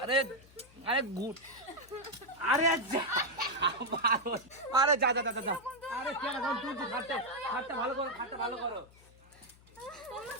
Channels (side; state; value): left; noise; hum, 25 dB below the sound